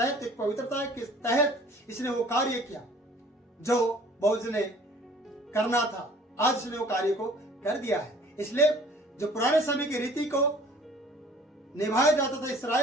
एक पवित्रता के तहत इसने वो कार्य किया जो बोअज ने करना था। आज उसने वो कार्य को कर दिया है। इसलिए जो पुराने समय की रीति को निभाया जाता था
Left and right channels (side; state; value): both; normal; correlation 0.51